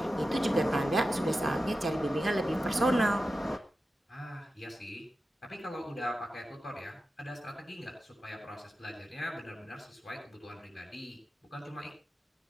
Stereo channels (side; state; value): both; normal; correlation 0.92